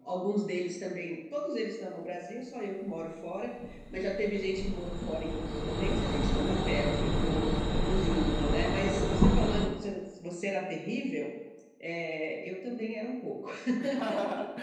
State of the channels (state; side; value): identical; both; correlation 1.00